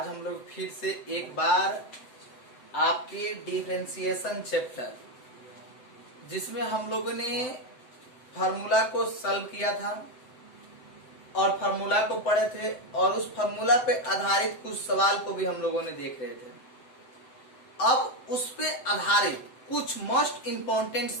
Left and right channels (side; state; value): right; late; 7.8 ms